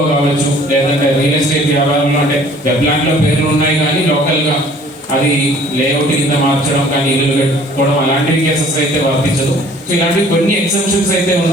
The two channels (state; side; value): normal; both; correlation 0.53